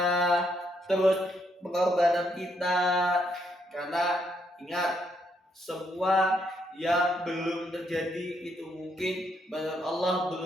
terus pengorbanan kita. Karena ingat, semua yang belum terjadi itu mungkin menurut Allah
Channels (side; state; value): both; normal; correlation 0.75